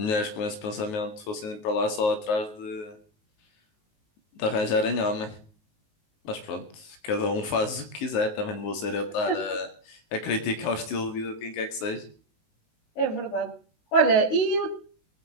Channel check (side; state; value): right; late; 19 ms